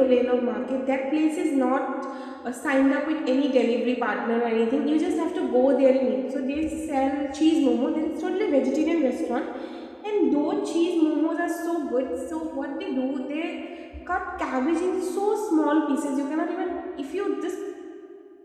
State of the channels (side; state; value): both; identical; correlation 1.00